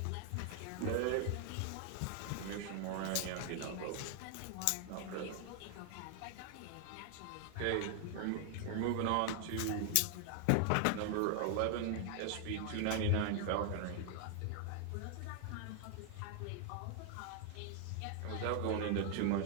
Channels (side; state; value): both; different; correlation 0.00